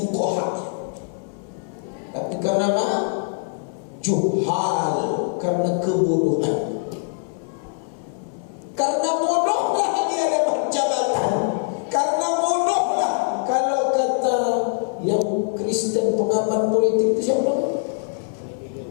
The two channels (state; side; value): silent; right; 60 dB below the other